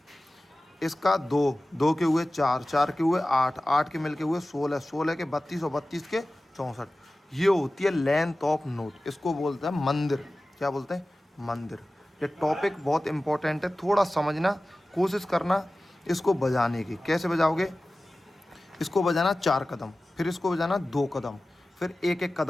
इसका 2 के हुए 4, 4 के हुए 8, 8 के मिल के हुए 16, 16 के 32 और 32 के 64। ये होती है लेंथ ऑफ नोट। इसको बोलते हैं मंदिर। क्या बोलते हैं? मंदिर। ये टॉपिक बहुत इंपॉर्टेंट है, थोड़ा समझना, कोशिश करना इसको बजाने की। कैसे बजाओगे? इसको बजाना 4 कदम, फिर इसको बजाना 2 कदम, फिर एक एक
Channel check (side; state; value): both; normal; correlation 0.96